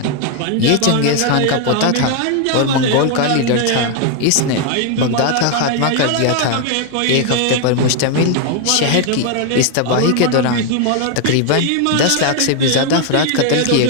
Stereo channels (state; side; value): different; both; correlation 0.01